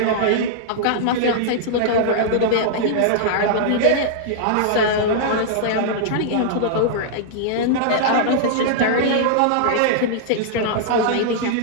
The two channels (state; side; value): different; both; correlation -0.01